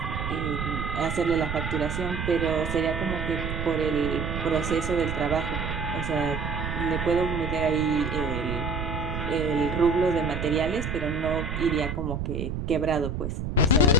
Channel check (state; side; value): noise; right; rumble, 4 dB below the sound